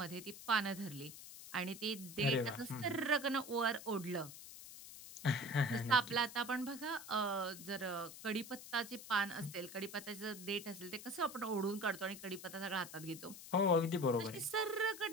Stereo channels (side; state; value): left; noise; hiss, 13 dB below the sound